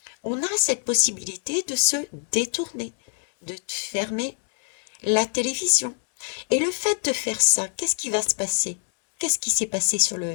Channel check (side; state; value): right; silent; digital silence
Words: On a cette possibilité de se détourner, de fermer la télévision. Et le fait de faire ça, qu'est-ce qui va se passer? Qu'est-ce qui s'est passé sur